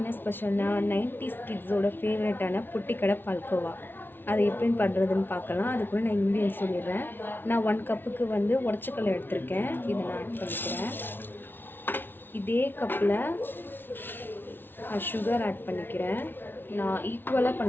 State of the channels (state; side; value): late; right; 0.10 ms